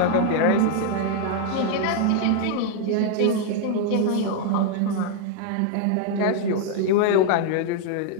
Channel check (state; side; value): different; both; correlation 0.00